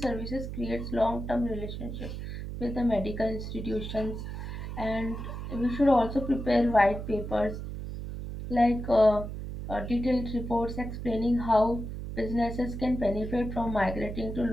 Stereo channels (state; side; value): noise; right; hum, 7 dB below the sound